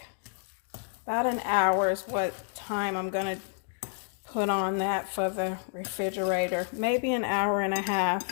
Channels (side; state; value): right; silent; 58 dB below the other